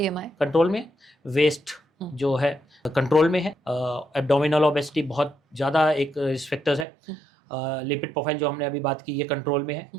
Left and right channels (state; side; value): drops out; left; at 6.9 s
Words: control में, वेस्ट जो है कंट्रोल में है, एब्डोमिनल ओबेसिटी बहुत ज़्यादा एक रिस्क फैक्टर्स है, लिपिड प्रोफाइल जो हमने अभी बात की ये कंट्रोल में है,